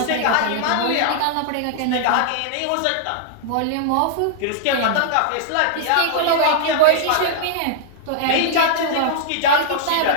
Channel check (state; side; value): different; both; correlation -0.01